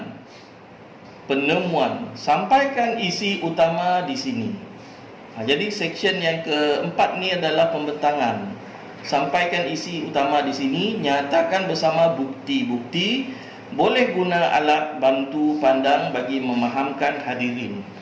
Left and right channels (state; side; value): identical; both; correlation 1.00